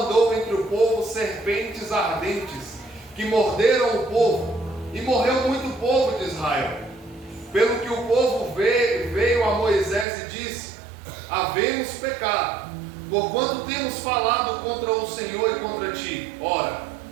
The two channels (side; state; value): left; drops out; at 10.1 s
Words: entre o povo serpentes ardentes, que morderam o povo, e morreu muito povo de Israel. Pelo que o povo veio a Moisés e disse: Havemos pecado, porquanto temos falado contra o Senhor e contra ti. Ora